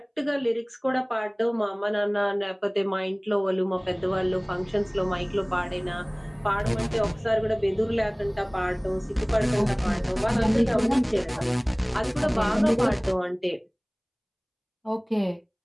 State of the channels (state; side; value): identical; both; correlation 1.00